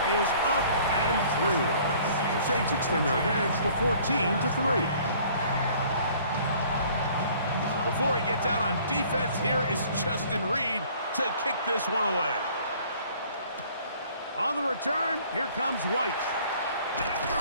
is up and through. The Saints extend their advantage to 14-3. Before he gets out on defense, here is Justin Reed to kick this one away. On the return, here comes White.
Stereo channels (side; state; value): both; inverted; correlation -0.55